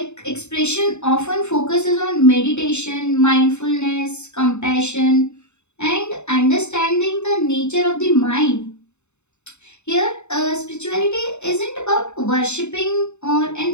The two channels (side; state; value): right; late; 0.82 ms